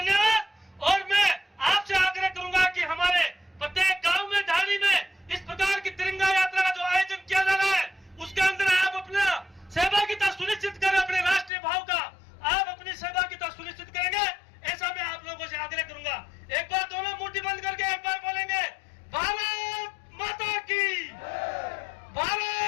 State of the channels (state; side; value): drops out; right; at 11.5 s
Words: और मैं आपसे आग्रह करूंगा कि हमारे प्रत्येक गांव में, ढाणी में इस प्रकार की तिरंगा यात्रा का जो आयोजन किया जा रहा है उसके अंदर आप अपना सहभागिता सुनिश्चित करें। अपने राष्ट्रीय भाव का आप अपनी सहभागिता सुनिश्चित करेंगे, ऐसा मैं आप लोगों से आग्रह करूंगा। एक बार दोनों मुट्ठी बंद करके एक बार बोलेंगे, भारत माता की,